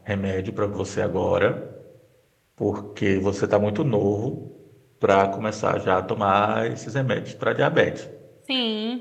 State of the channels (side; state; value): both; identical; correlation 1.00